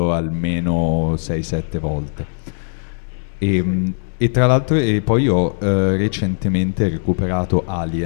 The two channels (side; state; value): right; silent; digital silence